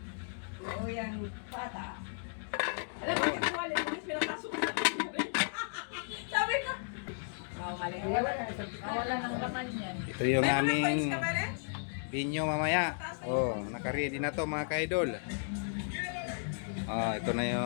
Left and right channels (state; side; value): silent; right; digital silence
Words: Oo, yung bata. Alam mo, yung wallet mo, pinapasok na. Sabi ko. Oh, mali. Wala nang laman yan. Ito yung May mga coins aming ka ba, Ren? binyo mamaya. Oh, naka-ready na to mga ka-idol. Oh, ito na